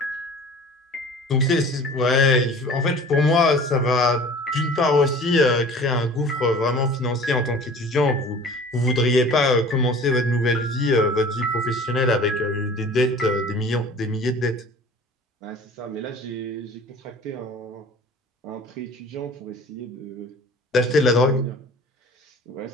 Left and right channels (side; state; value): both; normal; correlation 0.44